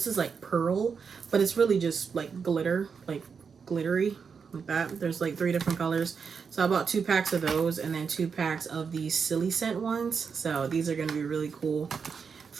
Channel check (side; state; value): left; quieter; 6.0 dB